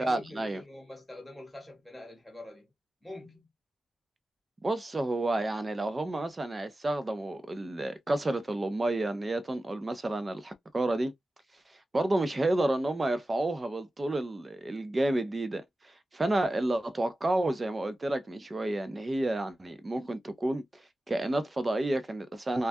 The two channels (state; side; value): normal; both; correlation 0.95